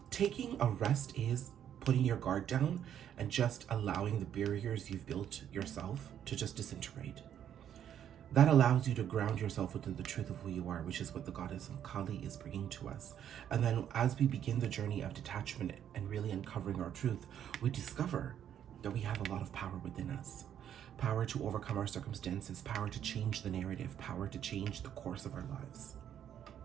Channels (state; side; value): quieter; left; 9.8 dB